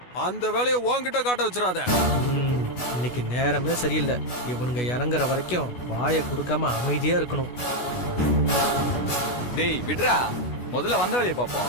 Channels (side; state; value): right; late; 16 ms